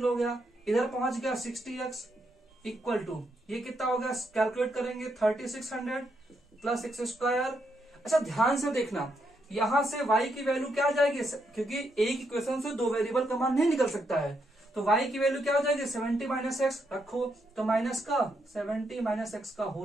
हो गया, इधर पहुंच गया 60x इक्वल टू ये कितना हो गया, कैलकुलेट करेंगे 3600 प्लस एक्स स्क्वायर। अच्छा ध्यान से देखना, यहां से y की वैल्यू क्या आ जाएगी, क्योंकि एक इक्वेशन से दो वेरिएबल का मान नहीं निकल सकता है, तो y की वैल्यू क्या हो जाएगी 70 माइनस एक्स रखो, तो माइनस का 70 माइनस एक्स का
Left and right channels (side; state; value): both; normal; correlation 0.79